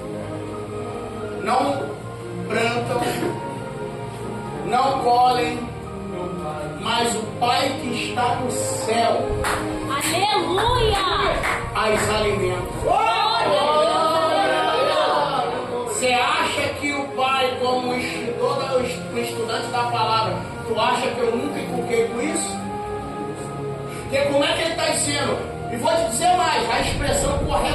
Não plantam, não colhem, mas o Pai que está no céu Aleluia! as alimenta. Você acha que o Pai, como estudante da palavra, tu acha que eu nunca inculquei com isso? Porque como é que ele está dizendo? E vou te dizer mais, a expressão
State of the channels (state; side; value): identical; both; correlation 1.00